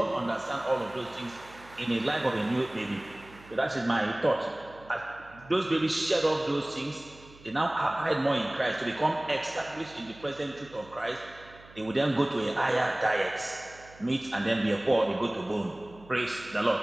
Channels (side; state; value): right; noise; hum, 23 dB below the sound